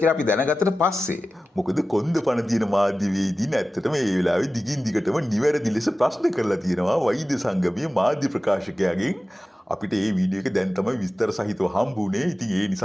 කියලා අපි දැනගත්තට පස්සේ මොකද කොන්ද පණ තියෙන මාධ්‍යවේදීන් ඇත්තටම මේ වෙලාවේ දිගින් දිගටම නිවැරදි ලෙස ප්‍රශ්න කරලා තියෙනවා වෛද්‍ය සංගමයේ මාධ්‍ය ප්‍රකාශකයාගෙන්. අපිට මේ වීඩියෝ එක දැන් තමයි විස්තර සහිතව හම්බුනේ. ඉතින් ඒ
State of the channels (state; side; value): normal; both; correlation 0.95